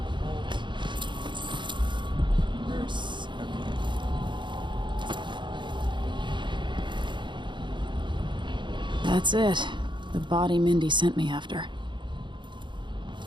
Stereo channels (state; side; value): late; left; 0.23 ms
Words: Verse. Okay. That's it. The body Mindy sent me after.